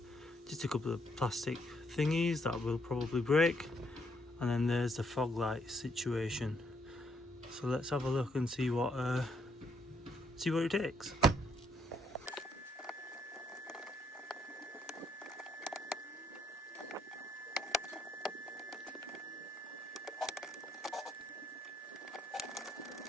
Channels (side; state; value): both; normal; correlation 0.73